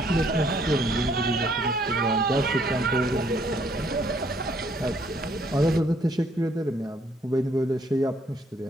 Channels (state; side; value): normal; both; correlation 0.66